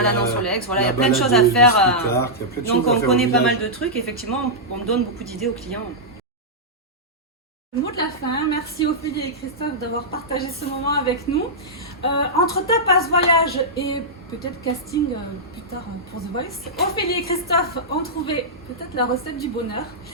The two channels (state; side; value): normal; both; correlation -0.10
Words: sur l'Aix, voilà, il y a plein de choses à faire. Donc on connaît pas mal de trucs, effectivement, on donne beaucoup d'idées aux clients. Le mot de la fin, merci Ophélie et Christophe d'avoir partagé ce moment avec nous. Entre tapas, voyage et peut-être casting plus tard pour The Voice, Ophélie et Christophe ont trouvé peut-être la recette du bonheur.